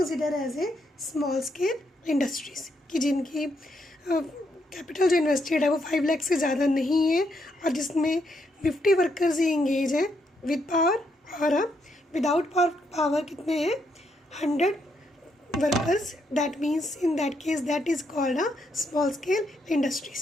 as a small scale industries कि जिनकी कैपिटल जो इन्वेस्टेड है वो 5 लाख से ज़्यादा नहीं है और जिसमें 50 वर्कर्स ही इंगेज हैं विद पावर और विदाउट पावर कितने हैं 100 workers. That means in that case that is called a small scale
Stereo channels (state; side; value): normal; both; correlation 0.77